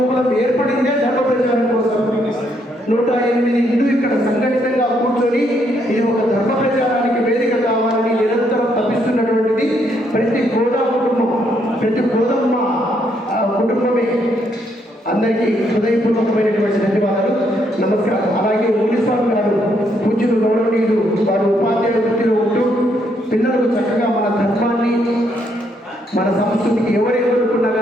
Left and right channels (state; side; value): normal; both; correlation 0.73